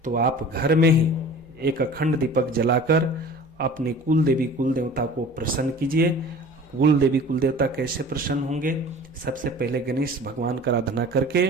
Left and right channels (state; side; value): normal; both; correlation 0.42